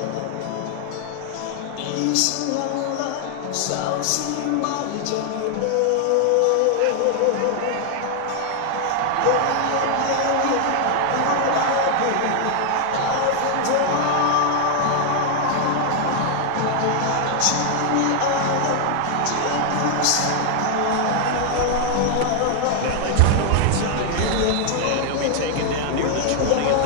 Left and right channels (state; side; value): different; both; correlation 0.00